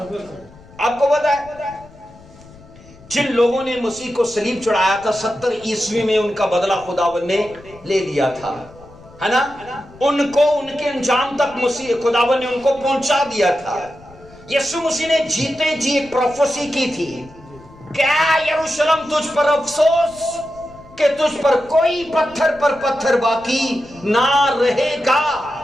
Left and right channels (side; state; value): left; noise; rumble, 23 dB below the sound